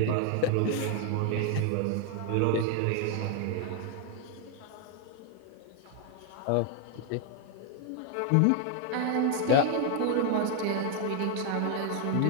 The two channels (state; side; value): different; both; correlation 0.00